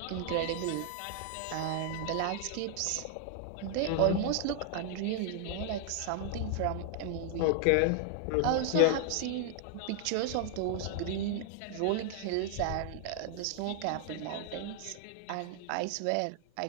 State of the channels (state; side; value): different; both; correlation 0.00